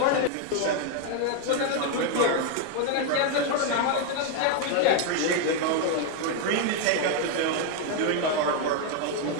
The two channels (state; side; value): different; both; correlation 0.01